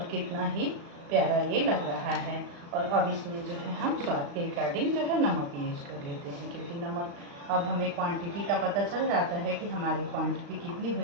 कितना ही प्यारा ये लग रहा है। और अब इसमें जो है हम स्वाद के अकॉर्डिंग जो है नमक यूज कर लेते हैं, क्योंकि नमक अब हमें क्वांटिटी का पता चल जाता है कि हमारी क्वांटिटी कितनी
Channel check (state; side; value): late; left; 35 ms